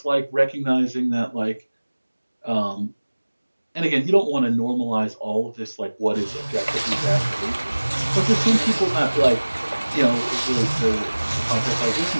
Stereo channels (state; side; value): inverted; both; correlation -1.00